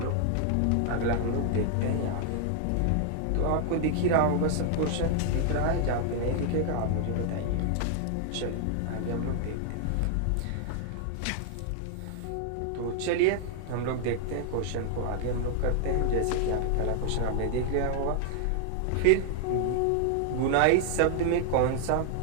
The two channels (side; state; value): both; different; correlation 0.00